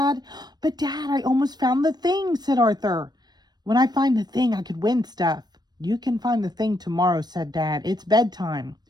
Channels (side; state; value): left; late; 0.20 ms